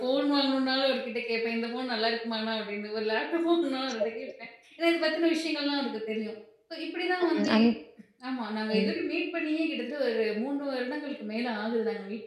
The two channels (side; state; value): both; identical; correlation 1.00